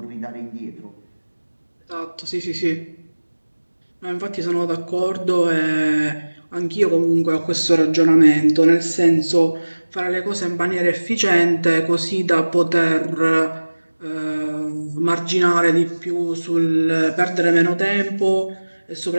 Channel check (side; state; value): both; inverted; correlation -1.00